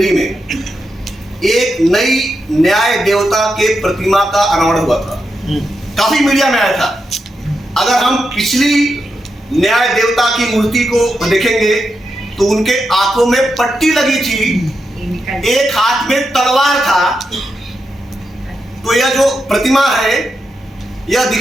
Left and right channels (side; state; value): both; normal; correlation 0.86